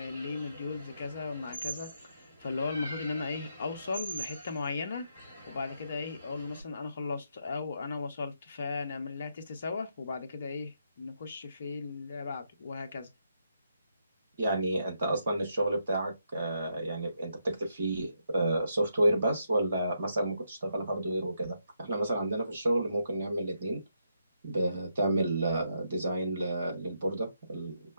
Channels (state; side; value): inverted; both; correlation -0.79